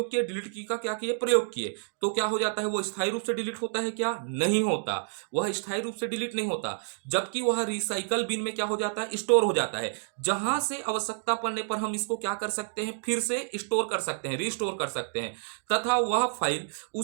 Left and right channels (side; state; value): left; silent; digital silence